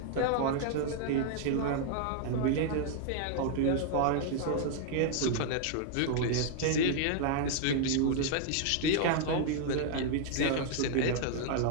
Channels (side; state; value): both; different; correlation 0.00